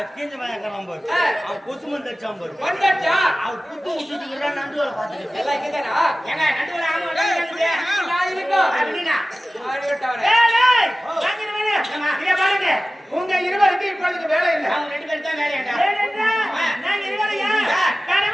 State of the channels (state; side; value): normal; both; correlation 0.96